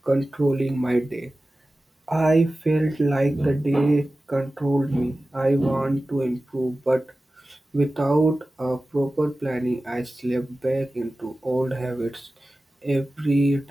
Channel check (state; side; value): normal; both; correlation 0.96